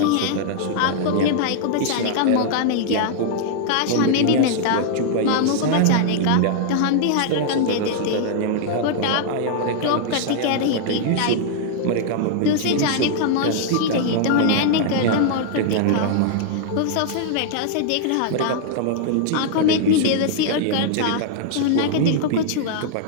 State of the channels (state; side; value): different; both; correlation -0.01